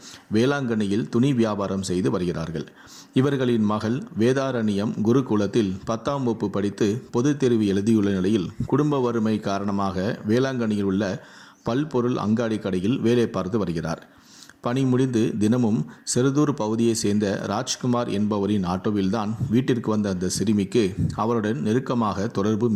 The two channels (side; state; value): both; identical; correlation 1.00